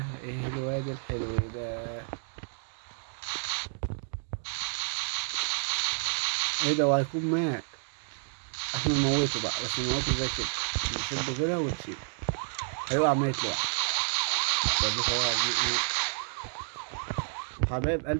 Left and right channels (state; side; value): silent; left; digital silence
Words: ايه الواد الحلو ده؟ ايه ده؟ وهيكون مات. احنا نموته بقى، بس نموته زي كده، نشده كده ونسيبه. هيقع ميت لوحده. حبايب